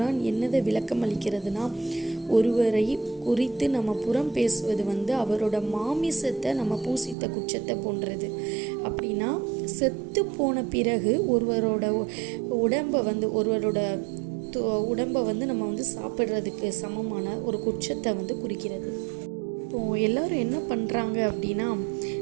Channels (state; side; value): drops out; left; at 7.2 s